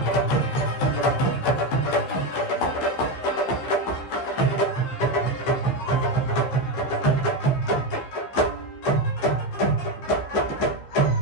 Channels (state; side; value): late; right; 15 ms